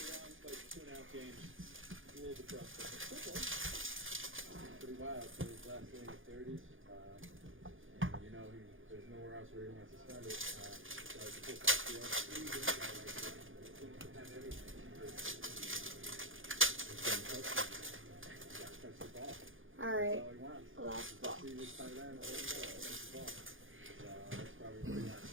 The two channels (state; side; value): late; left; 0.58 ms